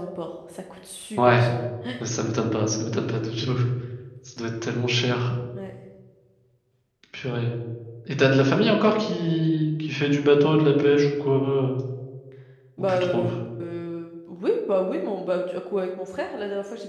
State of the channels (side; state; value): both; identical; correlation 1.00